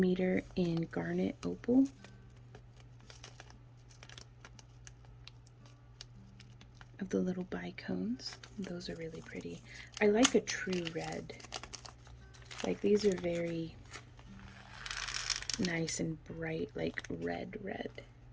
in garnet opal. Of the little bicones. Those are really pretty. I like a true red. Like these are very nice and bright, like red.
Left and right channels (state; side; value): identical; both; correlation 1.00